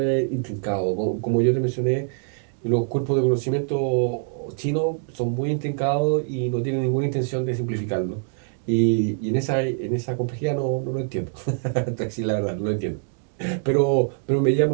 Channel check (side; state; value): left; silent; digital silence